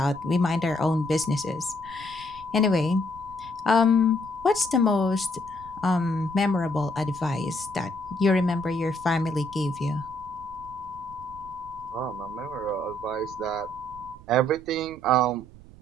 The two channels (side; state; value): right; noise; rumble, 19 dB below the sound